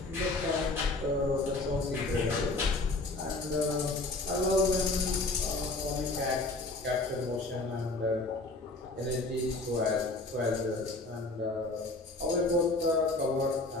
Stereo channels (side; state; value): right; quieter; 3.1 dB